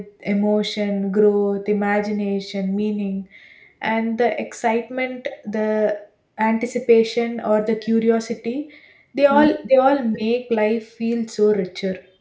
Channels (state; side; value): identical; both; correlation 1.00